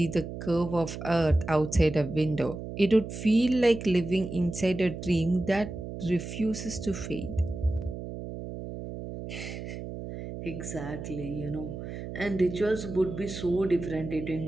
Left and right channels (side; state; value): right; noise; hum, 8 dB below the sound